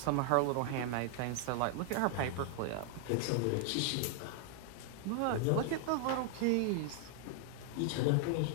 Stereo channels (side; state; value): both; different; correlation 0.00